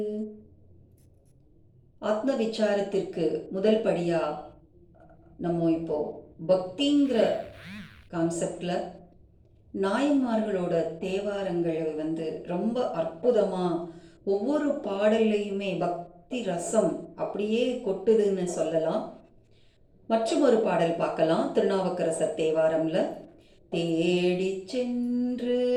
ஆத்ம விசாரத்திற்கு முதல் படியா நம்ம இப்போ பக்திங்கிற கான்செப்ட்ல நாயன்மார்களோட தேவாரங்களை ரொம்ப அற்புதமா ஒவ்வொரு பாடல்லையுமே பக்தி ரசம் அப்படியே கொட்டுதுன்னு சொல்லலாம். மற்றும் ஒரு பாடல் பார்க்கலாம். திருநாவுக்கரசர் தேவாரம்ல தேடி சென்று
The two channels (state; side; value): identical; both; correlation 1.00